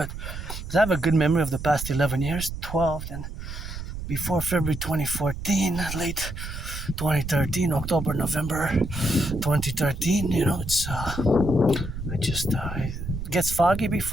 I have a good memory of the past 11 years, 12, and before February 2014, late 2013, October, November 2013, it's it gets foggy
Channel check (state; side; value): noise; right; rumble, 8 dB below the sound